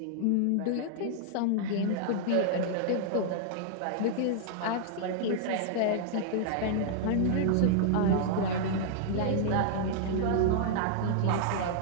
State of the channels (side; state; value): both; different; correlation -0.01